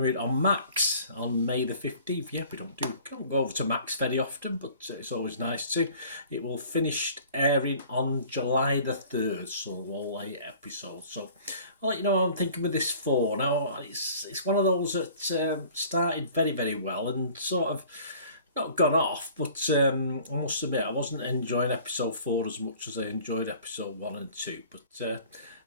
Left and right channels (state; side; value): inverted; both; correlation -0.49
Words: on Max on May the 15th. Yeah, we don't go over to Max very often, but it's always nice to. It will finish airing on July the 3rd, so all 8 episodes. So I'll let you know what I'm thinking with this 4. Now, it's one of those that started very, very well and sort of not gone off, but I must admit I wasn't enjoying episode 4 as much as I enjoyed episode 1 and 2, but